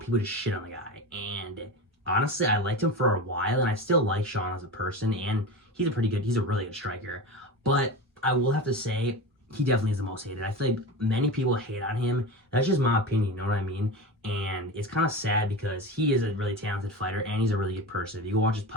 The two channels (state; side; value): normal; both; correlation 0.26